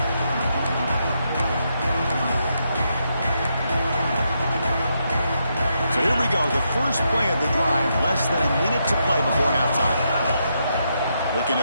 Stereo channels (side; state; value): both; inverted; correlation -0.81